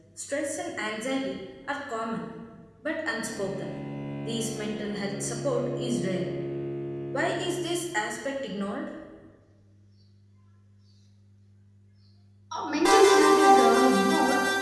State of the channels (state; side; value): identical; both; correlation 1.00